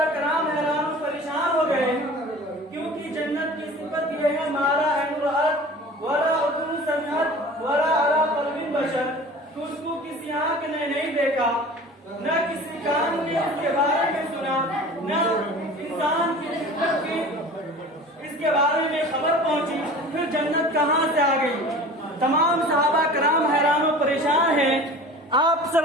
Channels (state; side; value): normal; both; correlation 0.40